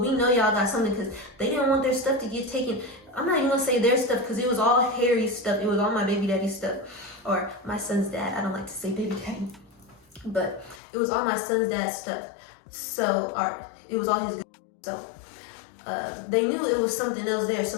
know y'all got something, because they didn't want their stuff to get taken. I'm not even going to say their stuff, because it was all Harry's stuff. It was all my baby daddy's stuff. Or my son's dad. I don't like to say baby daddy, but it was all my son's dad's stuff. So, it was all his good. So, they knew it was something else there. So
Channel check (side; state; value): right; drops out; at 10.8 s